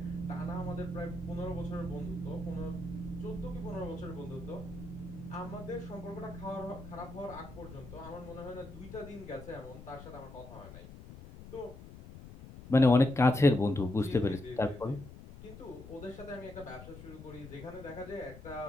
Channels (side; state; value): left; noise; rumble, 14 dB below the sound